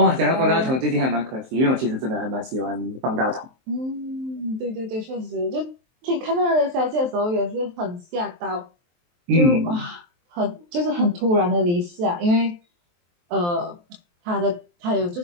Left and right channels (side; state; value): left; late; 23 ms